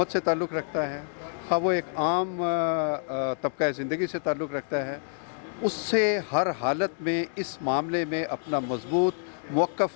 سے تعلق رکھتا ہے, خواہ وہ ایک عام طبقہ زندگی سے تعلق رکھتا ہے, اس سے ہر حالت میں اس معاملے میں اپنا مضبوط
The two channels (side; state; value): right; silent; digital silence